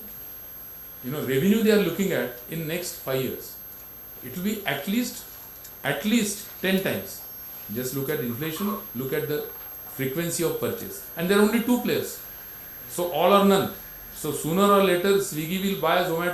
revenue they are looking at in next 5 years. It will be at least 10 times. Just look at inflation, look at the frequency of purchase. And there are only 2 players. So all or none. So sooner or later Swiggy will buy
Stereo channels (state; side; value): noise; left; hum, 25 dB below the sound